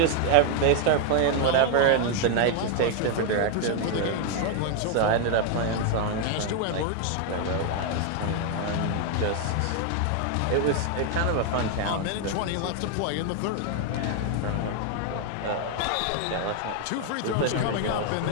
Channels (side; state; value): both; different; correlation 0.00